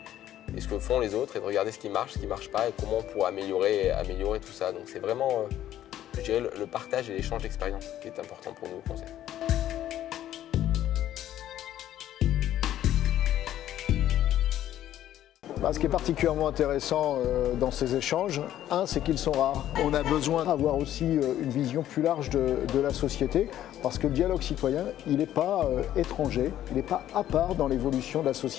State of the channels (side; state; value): right; quieter; 12.2 dB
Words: et ce que font les autres et de regarder ce qui marche pas et comment on pourrait améliorer tout ça. Donc c'est vraiment, je dirais, le partage et l'échange d'expériences qui est important pour nous au conseil. Ce qui est particulièrement intéressant dans ces échanges, c'est qu'ils sont rares. On a besoin d'avoir aussi une vision plus large de la société, parce que le dialogue citoyen, il n'est pas étranger, il n'est pas à part dans l'évolution de la